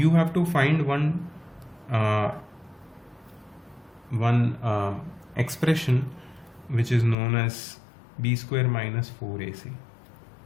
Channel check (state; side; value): drops out; right; at 7.2 s